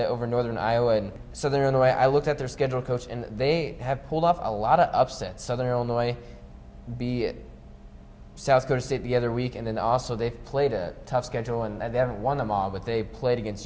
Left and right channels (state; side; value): identical; both; correlation 1.00